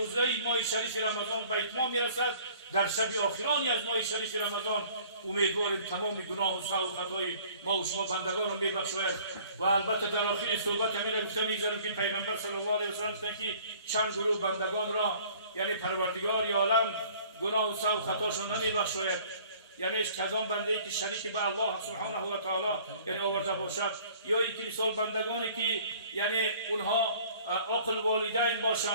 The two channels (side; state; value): both; inverted; correlation -0.52